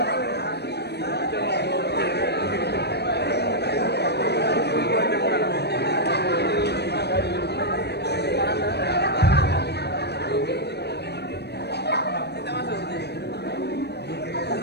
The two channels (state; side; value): late; right; 0.48 ms